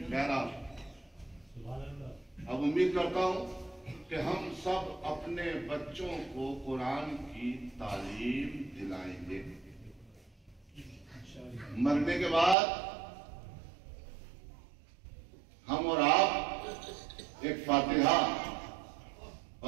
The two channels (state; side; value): drops out; left; at 12.6 s